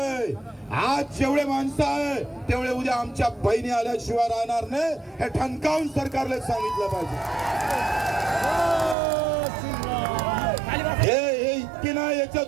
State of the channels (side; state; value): left; drops out; at 9.0 s